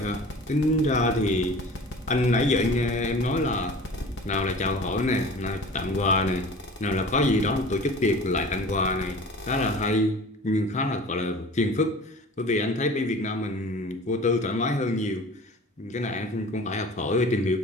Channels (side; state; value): both; normal; correlation 0.41